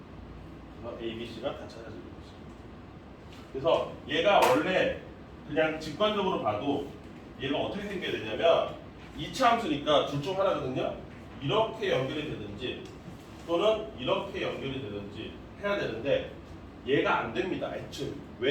그래서 A, B, C가 다 찾아지는 거죠. 그래서 얘가 원래 그냥 직관적으로 봐도 얘가 어떻게 생겨야 되냐면 2차 함수니까 둘 중 하나거든요. 이렇게 연결이 되든지 또는 이렇게 연결이 되든지 해야 되는데 얘가 안 됩니다. 애초에.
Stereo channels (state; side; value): identical; both; correlation 1.00